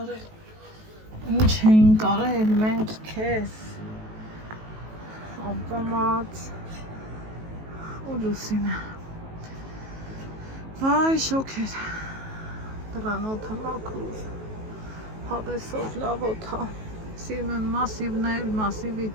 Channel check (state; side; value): late; left; 19 ms